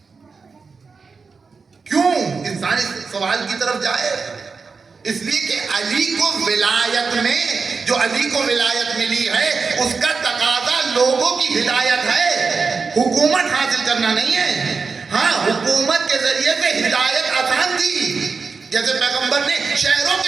کیوں؟ انسان اس سوال کی طرف جائے. اس لیے کہ علی کو ولایت میں, جو علی کو ولایت ملی ہے اس کا تقاضا لوگوں کی ہدایت ہے, حکومت حاصل کرنا نہیں ہے. ہاں حکومت کے ذریعے سے ہدایت آسان تھی, جیسے پیغمبر نے شہروں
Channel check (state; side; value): quieter; left; 4.9 dB